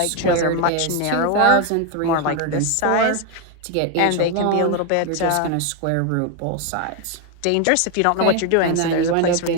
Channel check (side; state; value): both; different; correlation 0.01